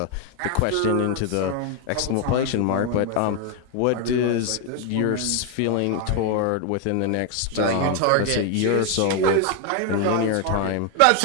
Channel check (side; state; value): both; different; correlation 0.01